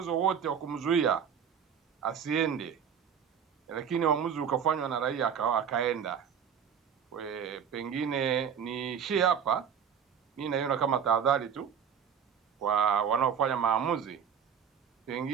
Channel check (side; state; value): left; quieter; 7.7 dB